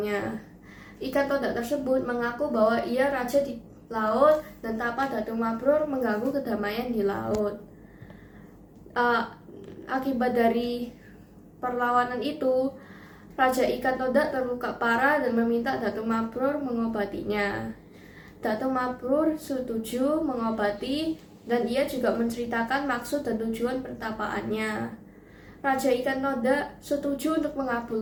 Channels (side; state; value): both; identical; correlation 1.00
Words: Ikan toda tersebut mengaku bahwa ia raja di laut dan tapa Datu Mabrur mengganggu kedamaian di laut. Akibat dari perlawanan itu, Raja Ikan Toda terluka parah dan meminta Datu Mabrur mengobatinya. Datu Mabrur setuju mengobati dan ia juga menceritakan maksud dan tujuan pertapaannya. Raja Ikan Toda setuju untuk